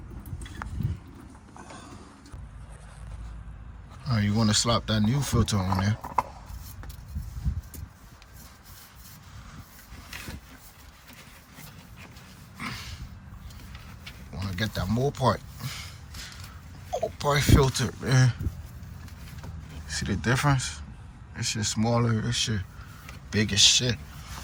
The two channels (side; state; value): both; identical; correlation 1.00